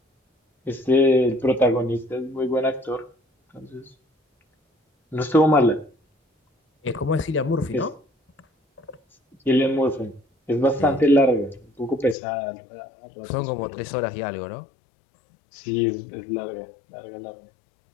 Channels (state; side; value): drops out; right; at 12.2 s